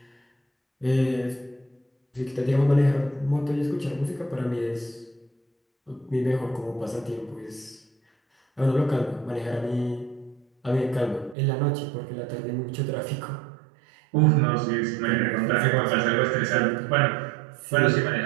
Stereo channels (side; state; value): left; drops out; at 11.4 s